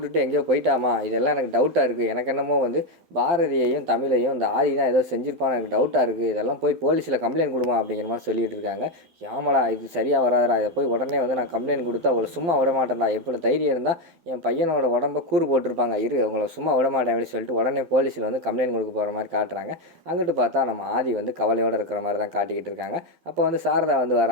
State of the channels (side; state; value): left; late; 12 ms